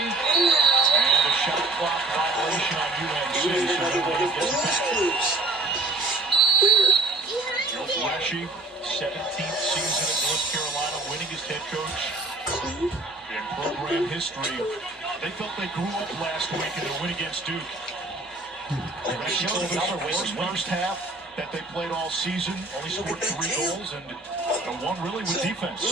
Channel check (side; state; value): left; quieter; 3.1 dB